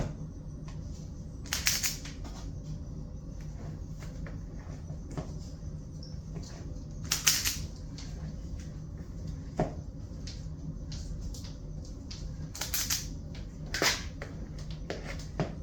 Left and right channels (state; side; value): identical; both; correlation 1.00